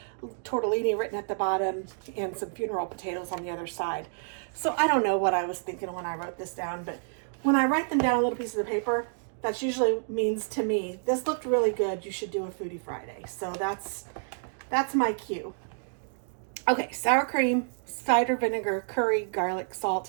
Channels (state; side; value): silent; left; digital silence